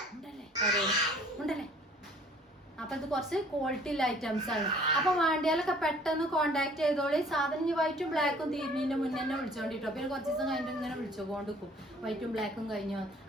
ഉണ്ടല്ലേ. അപ്പൊ ഇത് കുറച്ച് ക്വാളിറ്റി ഉള്ള ഐറ്റംസ് ആണ്. അപ്പൊ വേണ്ടിയാലൊക്കെ പെട്ടെന്ന് കോണ്ടാക്ട് ചെയ്തോളി. സാധനം ഈ വൈറ്റും ബ്ലാക്കും തീരുന്നതിന്റെ മുന്നേ തന്നെ വിളിച്ചോണ്ടിട്ടോ. പിന്നെ കുറച്ച് ദിവസം കഴിഞ്ഞിട്ട് ഇങ്ങനെ വിളിച്ചുകൊണ്ടിരിക്കും, വൈറ്റും ബ്ലാക്കും കഴിഞ്ഞു.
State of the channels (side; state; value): both; normal; correlation 0.54